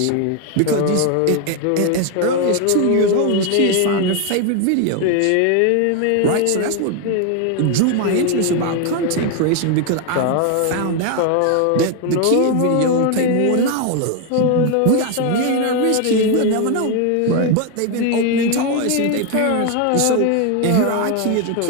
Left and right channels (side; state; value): both; different; correlation 0.01